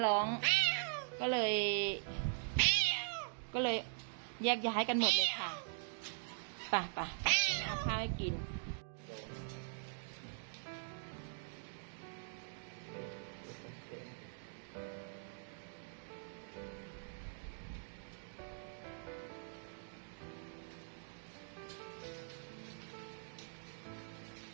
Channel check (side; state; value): left; silent; digital silence